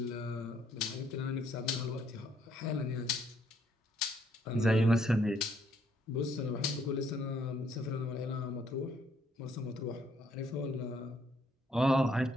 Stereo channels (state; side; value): normal; both; correlation 0.69